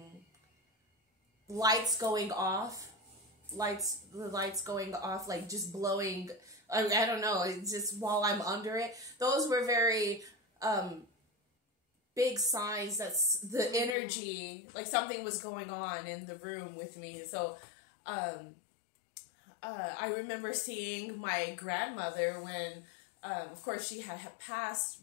Lights going off. The lights going off, like just blowing. I don't know, it's just while I'm under it. Those were very big signs that the energy, like something was going on in the room with me. So I remember seeing my grandmother when, of course, she had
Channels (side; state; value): right; drops out; at 14.0 s